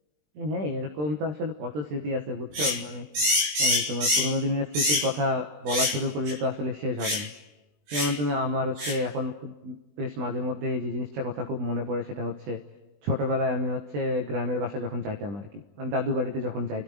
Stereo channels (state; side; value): late; left; 20 ms